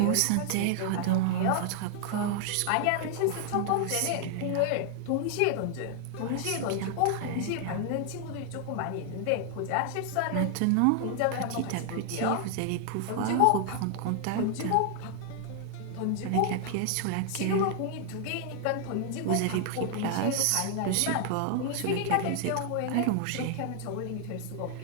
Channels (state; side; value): different; both; correlation 0.00